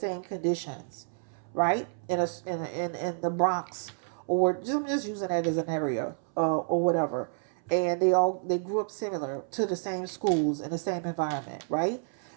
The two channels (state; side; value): silent; left; 58 dB below the other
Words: conditions, right? In the Bronx, or I'm just using that as an area, or whatever. And they grew up similar to the same schools in the same environment, right?